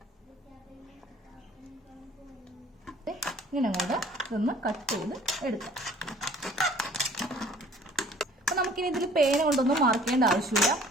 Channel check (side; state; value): both; normal; correlation 0.53